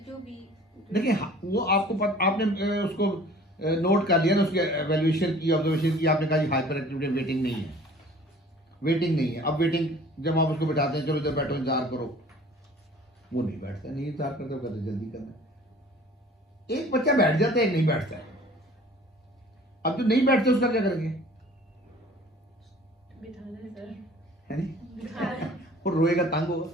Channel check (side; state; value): both; normal; correlation 0.49